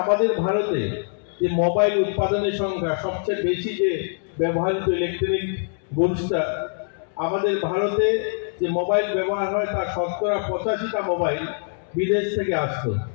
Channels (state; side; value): silent; right; digital silence